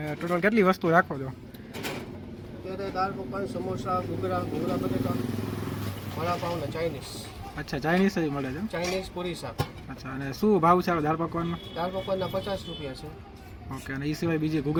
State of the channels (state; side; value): identical; both; correlation 1.00